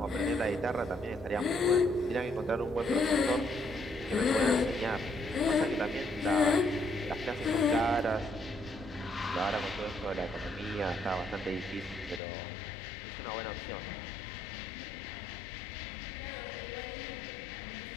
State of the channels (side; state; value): right; drops out; at 12.2 s